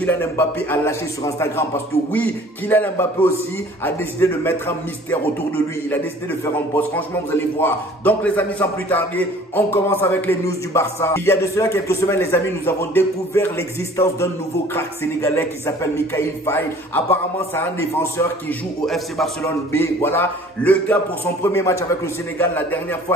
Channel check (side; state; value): both; normal; correlation 0.50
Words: Mbappé a lâché sur Instagram. Parce que oui, Kylian Mbappé aussi a décidé de mettre un mystère autour de lui. Il a décidé de faire un post. Franchement, vous allez voir. Donc les amis, sans plus tarder, on commence avec les news du Barça. Il y a de cela quelques semaines, les amis, nous avons découvert l'existence d'un nouveau crack sénégalais qui s'appelle Mikayil Faye. Apparemment, c'est un défenseur qui joue au FC Barcelone B. Voilà, le gars pour son premier match avec le Sénégal, la dernière